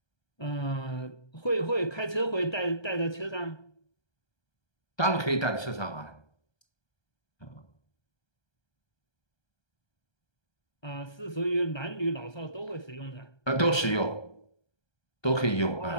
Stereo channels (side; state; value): right; late; 1.3 ms